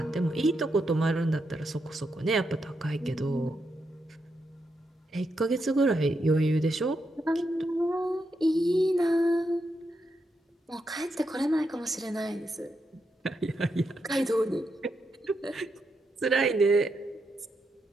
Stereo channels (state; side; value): normal; both; correlation 0.83